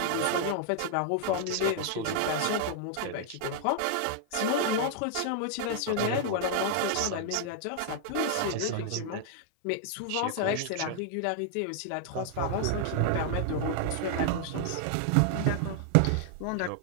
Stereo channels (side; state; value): both; different; correlation 0.00